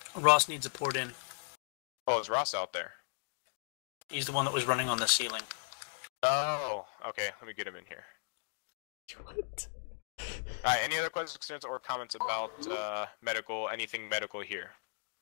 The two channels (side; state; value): right; silent; digital silence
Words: Ross needs a port in. Oh, is Ross out there? He's the one that was running on the ceiling. Oh, okay. Let me get him in here. What? Alright, any other questions, concerns, or comments about anything medical here?